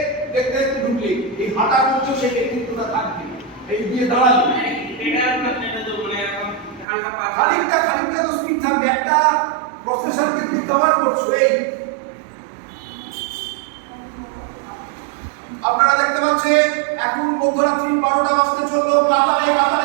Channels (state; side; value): drops out; left; at 6.9 s